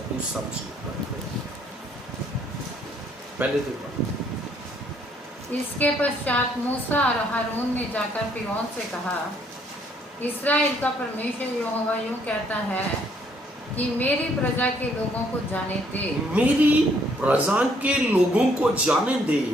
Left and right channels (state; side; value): normal; both; correlation 0.66